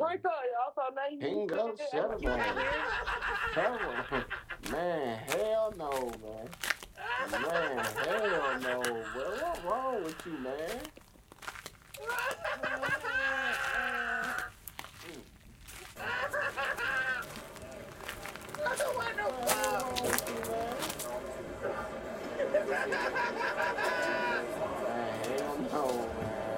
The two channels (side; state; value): both; identical; correlation 1.00